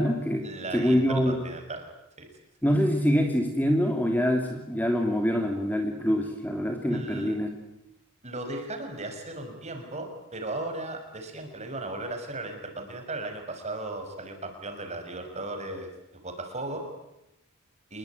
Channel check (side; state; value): both; normal; correlation 0.79